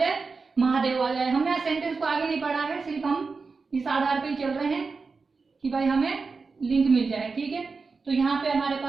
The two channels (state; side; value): quieter; left; 4.5 dB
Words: महादेव आ जाए। हमने सेंटेंस को आगे नहीं पढ़ा है, सिर्फ हम इस आधार पे ही चल रहे हैं कि भाई हमें लिंक मिल जाए, ठीक है। तो यहाँ पे हमारे